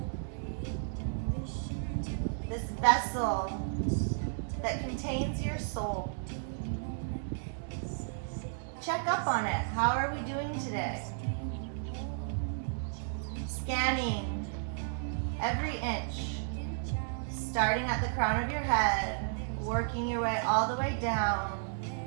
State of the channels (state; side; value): silent; left; 56 dB below the other